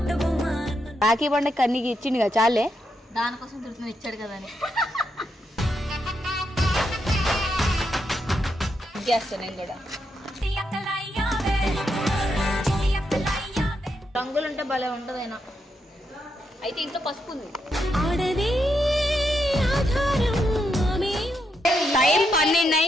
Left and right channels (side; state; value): both; normal; correlation 0.81